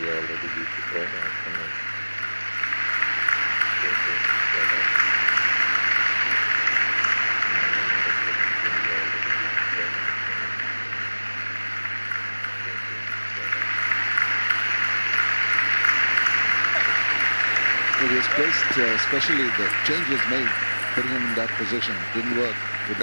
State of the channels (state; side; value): inverted; both; correlation -1.00